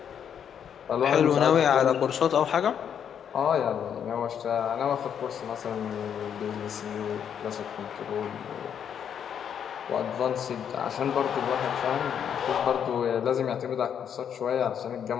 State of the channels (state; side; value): quieter; right; 8.4 dB